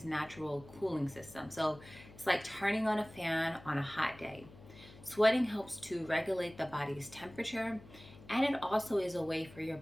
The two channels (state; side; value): noise; left; hum, 19 dB below the sound